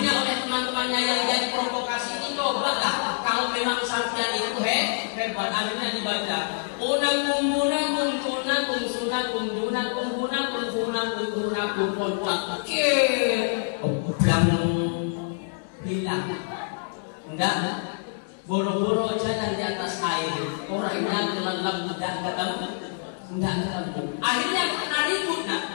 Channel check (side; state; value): right; silent; digital silence